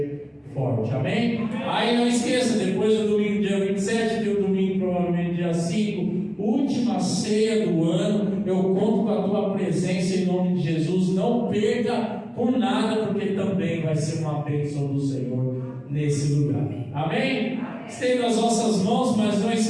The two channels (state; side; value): identical; both; correlation 1.00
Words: forte. Amém? Aí não esqueça, depois do domingo dia 27, tem o domingo provavelmente dia 5, última ceia do ano. Eu conto com a tua presença em nome de Jesus. Não perca por nada, porque também vai ser uma bênção do Senhor nesse lugar. Amém? Estenda as vossas mãos, mas não